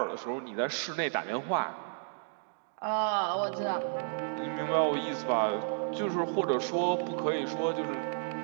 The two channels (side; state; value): left; silent; digital silence